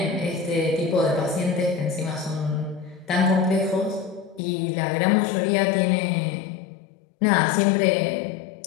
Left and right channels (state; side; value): drops out; right; at 4.4 s